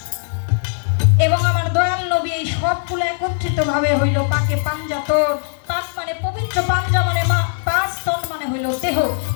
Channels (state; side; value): silent; right; digital silence